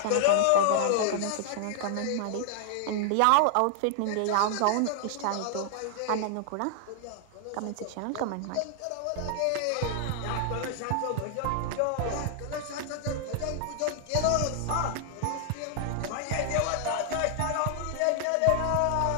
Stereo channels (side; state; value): both; different; correlation 0.00